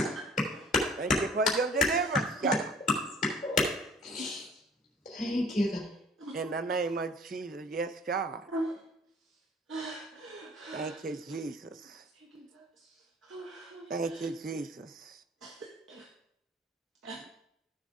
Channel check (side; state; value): both; normal; correlation 0.52